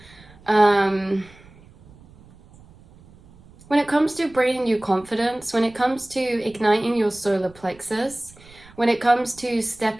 bringing you confidence, when it comes to igniting your solar plexus, when it comes to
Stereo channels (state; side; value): noise; right; rumble, 24 dB below the sound